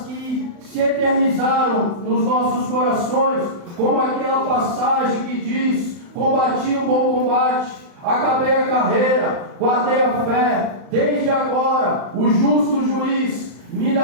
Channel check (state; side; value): late; left; 35 ms